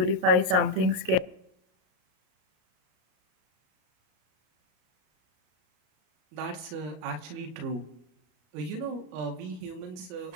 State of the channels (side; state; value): left; late; 32 ms